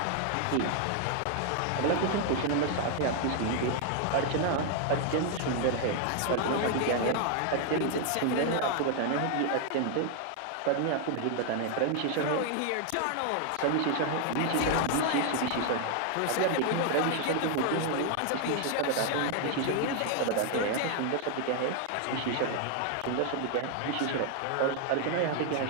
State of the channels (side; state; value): both; different; correlation 0.00